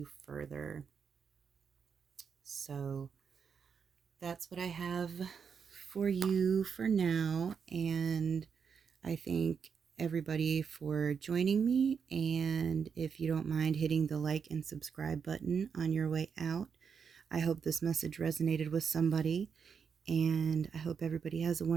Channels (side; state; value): left; quieter; 6.5 dB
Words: further. So that's what I have for you for now. And I thank everybody for joining me. And if you don't mind hitting the like and subscribe button on your way out, I hope this message resonated with somebody. And I hope everybody has a